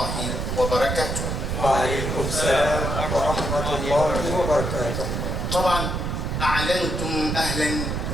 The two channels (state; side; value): noise; right; rumble, 2 dB below the sound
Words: وبركاته. وعليكم السلام ورحمة الله وبركاته. طبعا أعلنتم أهلا